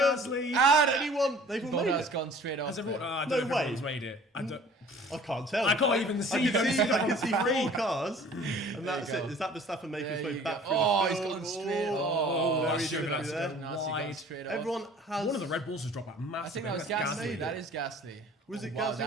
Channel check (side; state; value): both; normal; correlation 0.49